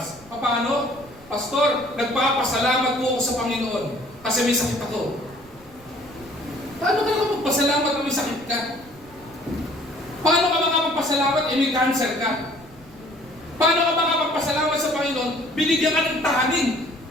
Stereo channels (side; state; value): right; noise; rumble, 24 dB below the sound